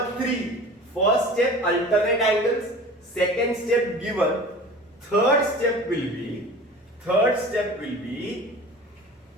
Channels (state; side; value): normal; both; correlation 0.39